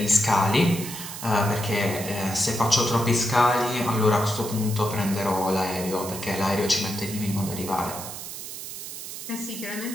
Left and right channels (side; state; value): right; noise; hiss, 9 dB below the sound